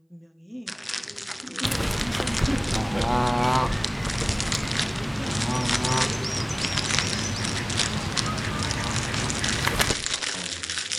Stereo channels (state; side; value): identical; both; correlation 1.00